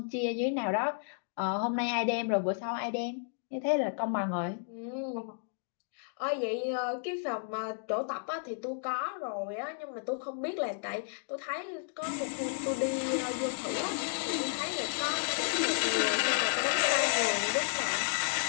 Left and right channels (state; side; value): silent; right; digital silence